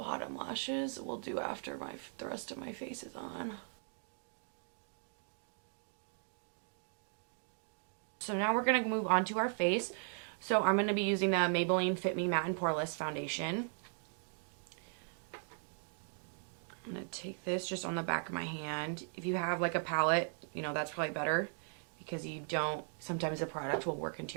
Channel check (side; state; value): left; silent; 52 dB below the other